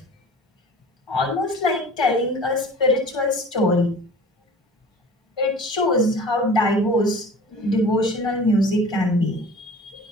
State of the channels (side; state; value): both; normal; correlation 0.42